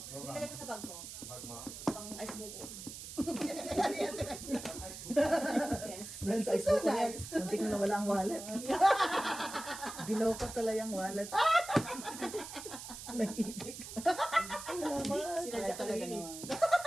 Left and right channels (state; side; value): noise; right; hiss, 11 dB below the sound